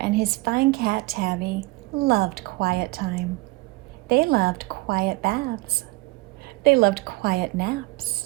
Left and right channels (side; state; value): left; quieter; 22.8 dB